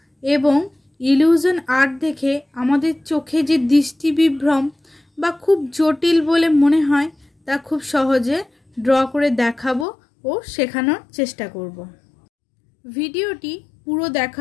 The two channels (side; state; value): right; drops out; at 9.9 s